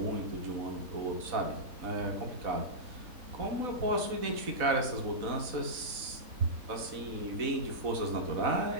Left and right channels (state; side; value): late; left; 4.0 ms